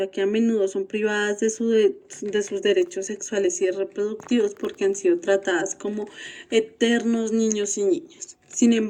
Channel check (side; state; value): both; identical; correlation 1.00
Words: que a menudo son privadas de sus derechos sexuales y reproductivos porque han sido tratadas como eternos niños y niñas. Sin